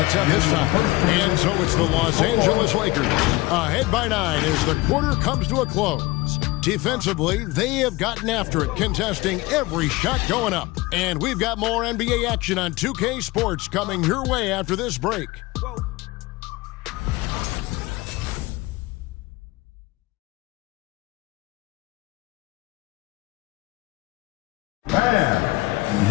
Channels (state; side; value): quieter; right; 21.0 dB